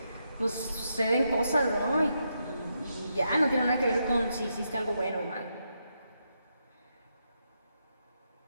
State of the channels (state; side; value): inverted; both; correlation -0.82